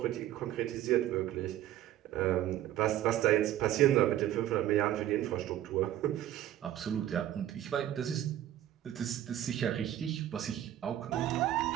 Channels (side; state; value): left; quieter; 12.5 dB